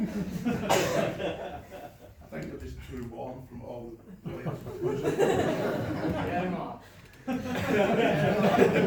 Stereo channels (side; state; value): both; identical; correlation 1.00